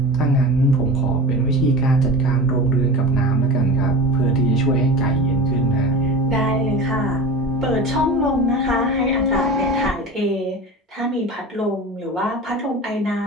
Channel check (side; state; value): both; normal; correlation 0.32